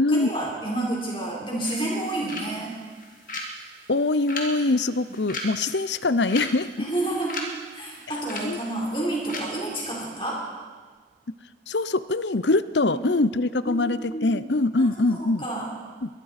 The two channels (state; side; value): normal; both; correlation 0.38